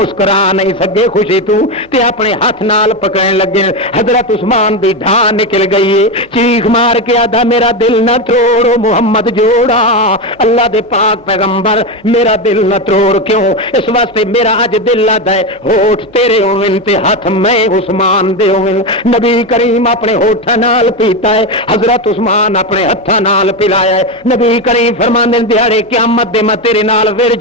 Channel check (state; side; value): normal; both; correlation 0.14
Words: نہیں سکے خوشی تو تے اپنے ہاتھ نال پکڑن لگے۔ حضرت عثمان دی ڈھا نکل گئی ہے، چیخ مار کے آدھا میرا دل نہ توڑو محمد جوڑا، اللہ دے پاک پیغمبر میرا دل نہ توڑ، کیوں اس واسطے میرا اج دل آدا ہے ہوٹھ تیرے ہوون تے ہاتھ میں عثمان دے ہوون۔ نبی کریم اپنے ہوٹھاں نال پیتا ہے، حضرت عثمان اپنے ہتھاں نال پلایا ہے۔ نبی کریم فرماندے دیہاڑے قیامت دے میں تیرے نال